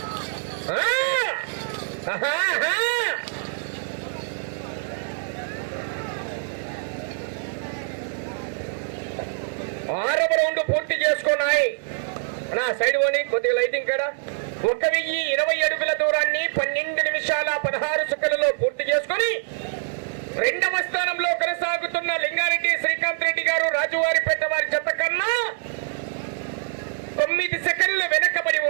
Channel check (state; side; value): silent; left; 62 dB below the other